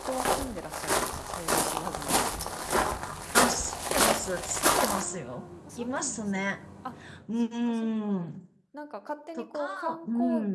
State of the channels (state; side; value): identical; both; correlation 1.00